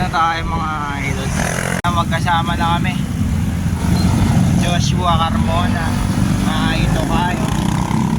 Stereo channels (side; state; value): both; identical; correlation 1.00